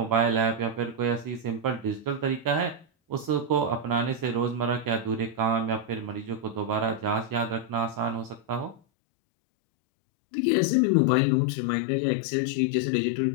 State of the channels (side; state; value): right; drops out; at 8.8 s